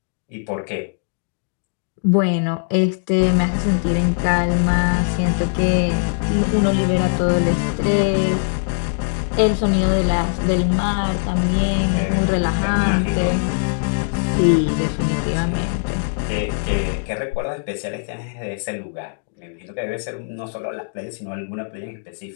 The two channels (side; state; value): right; silent; digital silence